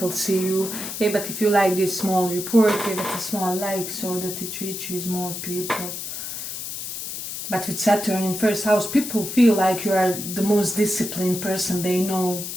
see you. Hey, but if you like this small report, give it a small like so that it reaches more people. But with Saturn in first house, people feel like you are the most disciplined person they know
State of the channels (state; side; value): noise; left; hiss, 7 dB below the sound